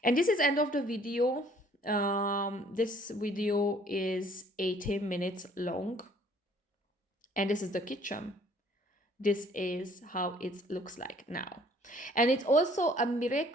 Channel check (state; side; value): normal; both; correlation 0.58